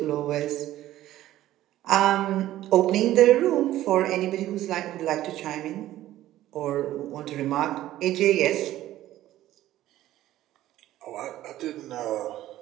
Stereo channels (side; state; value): left; quieter; 14.1 dB